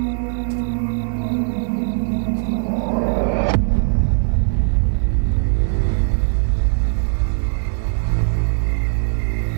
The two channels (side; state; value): left; silent; 66 dB below the other